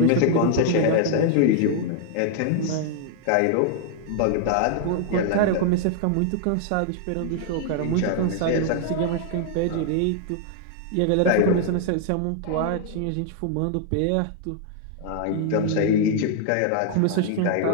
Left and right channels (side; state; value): both; different; correlation 0.00